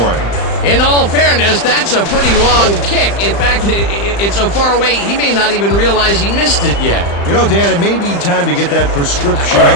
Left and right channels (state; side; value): late; right; 35 ms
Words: him. In all fairness, that's a pretty long kick. In fact, it's so far away, he may not even realize he missed it yet. You know, Dan, it may be time to get that prescription